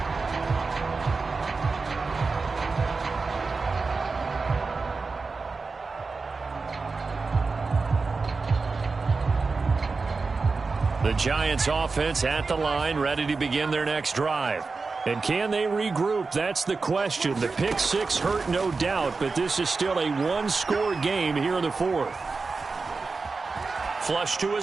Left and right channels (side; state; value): left; quieter; 4.2 dB